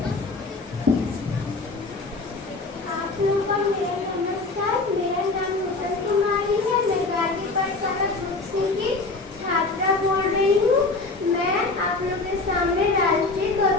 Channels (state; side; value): quieter; right; 3.5 dB